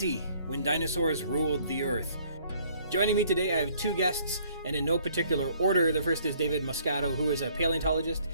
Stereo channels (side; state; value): both; inverted; correlation -0.60